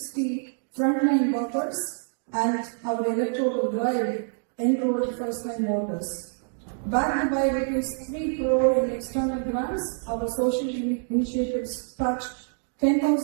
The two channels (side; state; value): left; silent; 61 dB below the other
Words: frontline workers, and our electoral drive enrolled first-time voters. Backed by ₹3 crore in external grants, our social initiatives touched